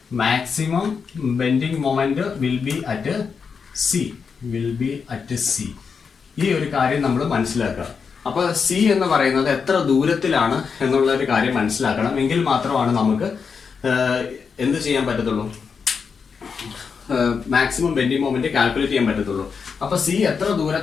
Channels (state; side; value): quieter; right; 5.8 dB